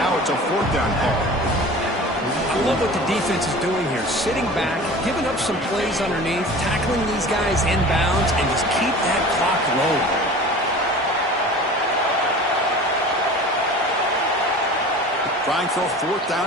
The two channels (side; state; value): both; normal; correlation 0.39